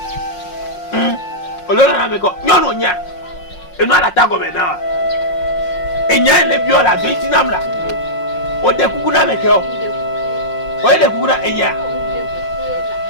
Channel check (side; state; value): right; late; 5.5 ms